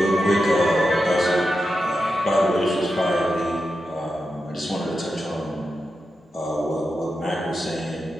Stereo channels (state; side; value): normal; both; correlation 0.89